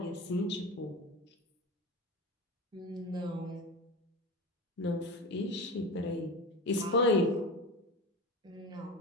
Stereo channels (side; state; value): both; normal; correlation 0.25